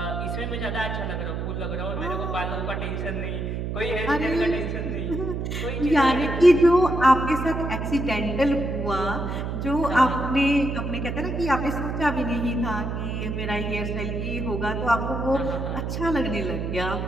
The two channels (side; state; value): right; noise; hum, 3 dB below the sound